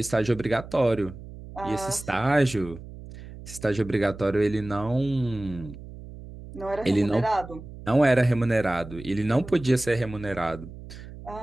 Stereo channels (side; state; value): right; noise; hum, 14 dB below the sound